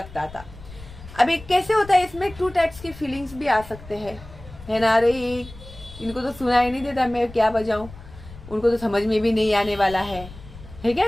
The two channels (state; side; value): noise; left; rumble, 17 dB below the sound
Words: था. अभी कैसे होता है, इसमें 2 टाइप्स की फीलिंग्स भी आ सकते हैं, है ना. अरे इनको तो सुनाई नहीं देता, मैं क्या बजाऊं, उनको तो समझ में भी नहीं आने वाला है क्या